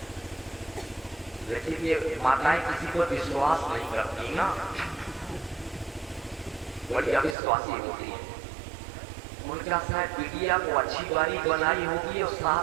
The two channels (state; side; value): drops out; left; at 7.4 s